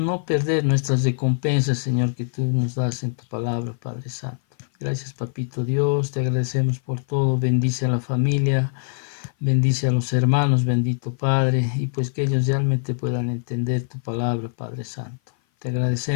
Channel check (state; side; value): silent; right; 57 dB below the other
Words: perder nuestras recompensas, Señor, que tú nos das en tu palabra, Padre Santo. Gracias, Papito Dios, te agradecemos por todo. Bendice a la familia, bendice a los hermanos, bendito Padre, y pues que ellos realmente puedan entender tu palabra, Padre Santo. Te